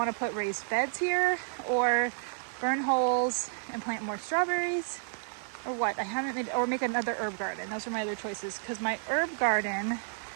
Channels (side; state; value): left; silent; 57 dB below the other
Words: to put raised beds here or burn holes and plant more strawberries, or what. I haven't made, or make another herb garden. Those are my other choices, because my herb garden